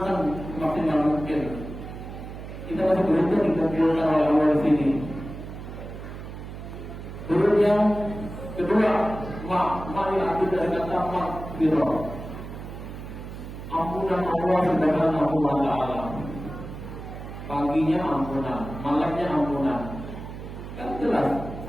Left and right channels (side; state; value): right; noise; hum, 10 dB below the sound